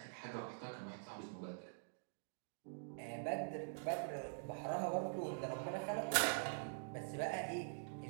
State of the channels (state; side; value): silent; left; digital silence